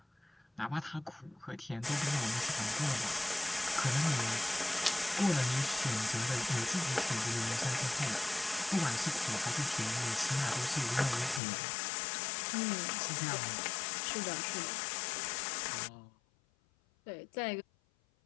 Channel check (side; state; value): right; drops out; at 11.4 s